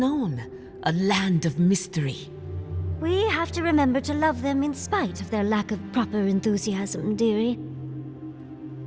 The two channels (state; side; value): identical; both; correlation 1.00